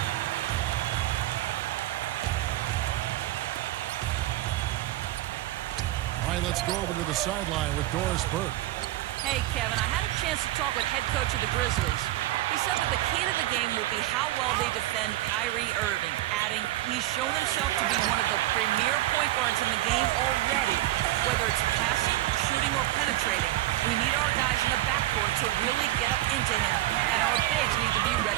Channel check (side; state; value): left; quieter; 15.9 dB